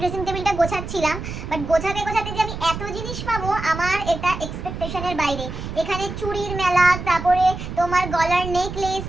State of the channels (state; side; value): noise; right; rumble, 8 dB below the sound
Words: ড্রেসিং টেবিলটা গোছাচ্ছিলাম, বাট গোছাতে গোছাতে যে আমি এত জিনিস পাবো আমার এটা এক্সপেকটেশনের বাইরে। এখানে চুড়ির মেলা, তারপরে তোমার গলার নেকলেস,